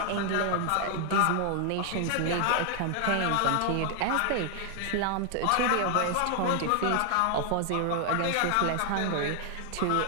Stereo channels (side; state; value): both; different; correlation 0.00